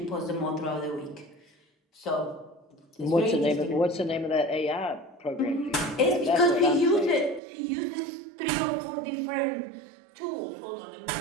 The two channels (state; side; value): drops out; left; at 7.4 s